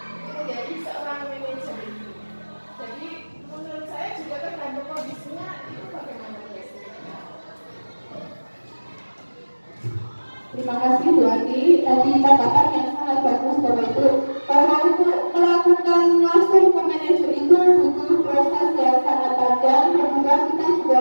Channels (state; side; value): inverted; both; correlation -1.00